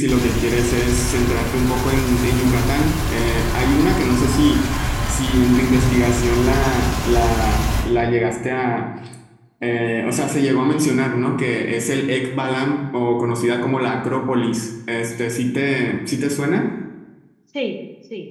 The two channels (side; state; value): both; identical; correlation 1.00